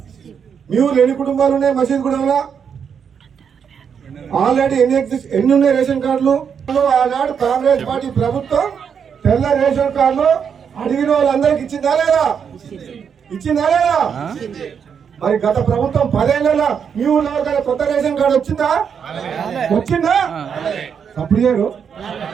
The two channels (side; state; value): left; quieter; 7.2 dB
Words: మీ ఊళ్ళో ఎన్ని కుటుంబాలు ఉన్నాయి? మసీద్ కూడా ఆల్రెడీ ఎన్ని ఉన్నాయి రేషన్ కార్డులు? ఆనాడు కాంగ్రెస్ పార్టీ ప్రభుత్వం తెల్ల రేషన్ కార్డులు అడిగిన వాళ్ళందరికి ఇచ్చిందా లేదా? ఇచ్చిందా లేదా? మరి గత ప్రభుత్వం 10 ఏళ్ళ మీ ఊళ్ళో ఎవరికైనా కొత్త రేషన్ కార్డు వచ్చిందా? అప్పుడు చేయరు.